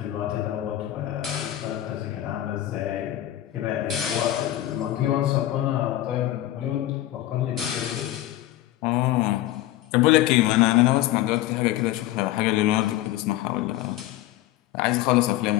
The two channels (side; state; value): right; quieter; 14.5 dB